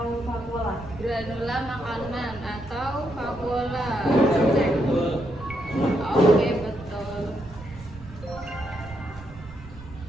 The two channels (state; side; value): noise; right; rumble, 17 dB below the sound